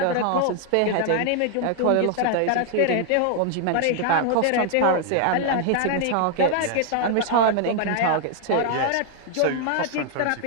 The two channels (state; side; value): different; both; correlation 0.00